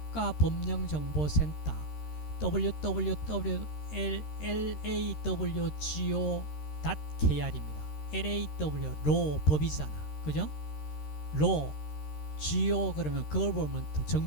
www.lawgo.kr입니다. LAW law 법이잖아, 그죠? law go 그러면 그걸 보면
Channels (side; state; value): right; late; 13 ms